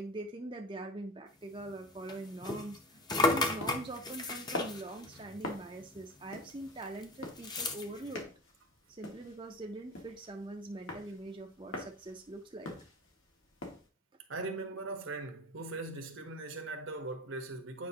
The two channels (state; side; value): normal; both; correlation 0.33